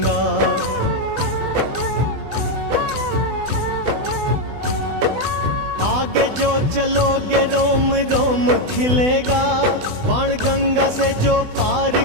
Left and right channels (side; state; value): left; late; 20 ms